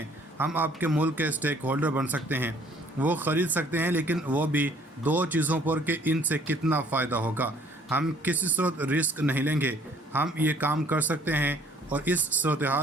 हम आपके मुल्क के स्टेक होल्डर बन सकते हैं, वो ख़रीद सकते हैं, लेकिन वो भी दो चीज़ों पर कि इनसे कितना फ़ायदा होगा। हम किसी सूरत रिस्क नहीं लेंगे, हम ये काम कर सकते हैं और इस सूरत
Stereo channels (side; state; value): both; normal; correlation 0.59